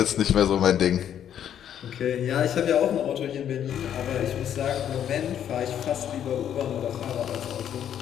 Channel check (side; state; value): right; quieter; 9.8 dB